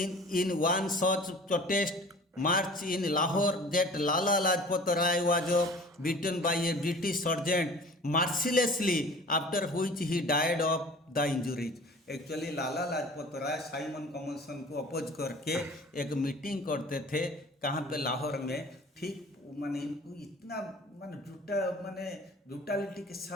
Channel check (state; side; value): normal; both; correlation 0.45